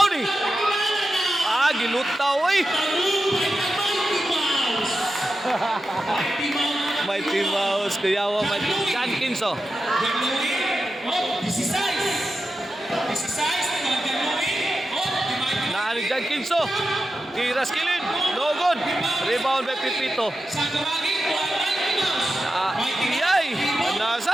ni. Gilutaw eh. Mighty Mouse. Kuyawa. John Kinso. Nani John Kinso. Tira skilin. No good. Rebound by Pipito.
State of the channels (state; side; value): normal; both; correlation 0.91